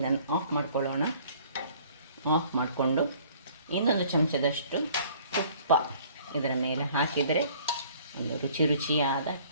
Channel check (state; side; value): inverted; both; correlation -0.55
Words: ಆಫ್ ಮಾಡ್ಕೊಳ್ಳೋಣ. ಆಫ್ ಮಾಡಿಕೊಂಡು 1 ಚಮಚದಷ್ಟು ತುಪ್ಪ ಇದರ ಮೇಲೆ ಹಾಕಿದರೆ ಒಂದು ರುಚಿಯಾದ